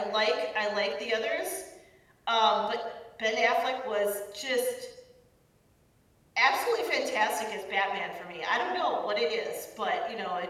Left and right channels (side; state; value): both; identical; correlation 1.00